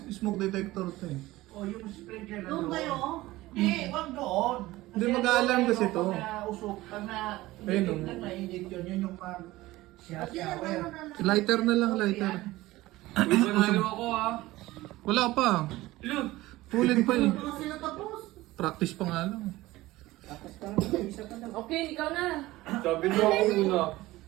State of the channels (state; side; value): quieter; left; 18.1 dB